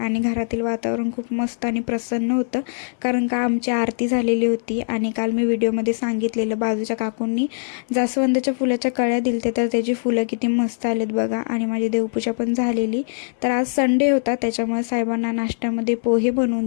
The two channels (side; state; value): right; silent; 60 dB below the other